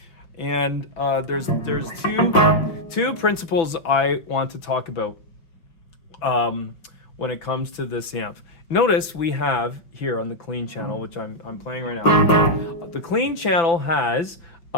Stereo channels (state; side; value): late; right; 6.0 ms